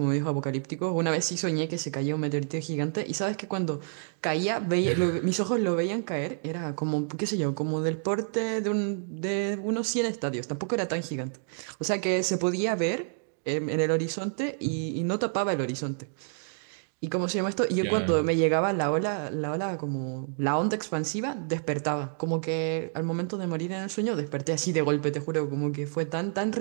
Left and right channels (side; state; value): left; silent; digital silence